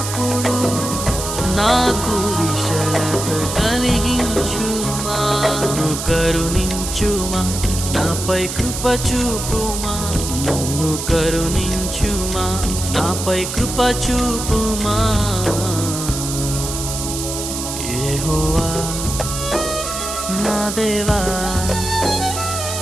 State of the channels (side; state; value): right; noise; hiss, 5 dB below the sound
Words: నాకు విశాలత కలిగించుమా. నన్ను కరుణించుమా, నాపై కృప చూపుమా. నన్ను కరుణించుమా, నాపై కృప చూపుమా. యెహోవా నా దేవా,